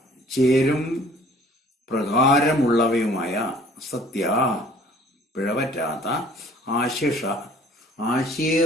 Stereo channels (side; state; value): both; normal; correlation 0.53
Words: ചേരും പ്രകാരമുള്ളവയുമായ സത്യ പിഴവറ്റാത്ത